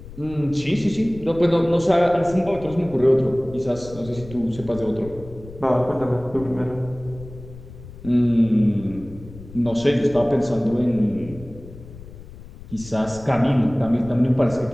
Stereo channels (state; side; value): noise; left; rumble, 16 dB below the sound